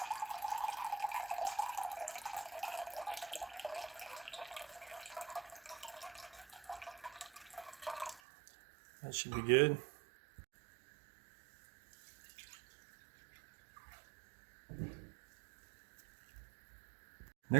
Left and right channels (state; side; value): drops out; left; at 8.2 s